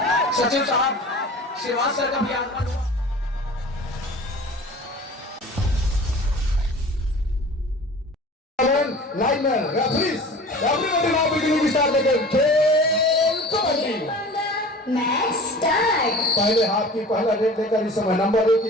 सचिव साहब श्रीवास सर का भी आगमन हुआ। Liner referees everybody now beginning start the game. खेल कबड्डी मैच स्टार्ट। पहले हाथ की पहला रेड लेकर इस समय नंबर 1 की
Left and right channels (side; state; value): both; normal; correlation 0.41